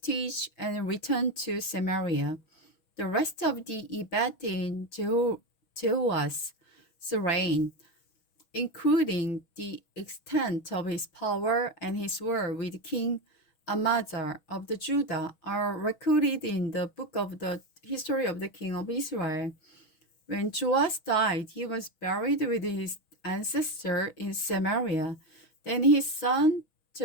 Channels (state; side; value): late; right; 6.2 ms